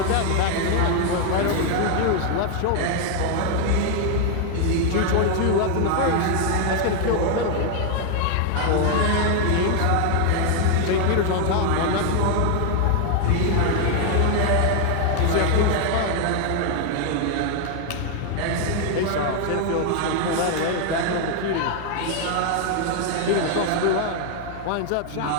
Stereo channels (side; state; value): both; different; correlation 0.00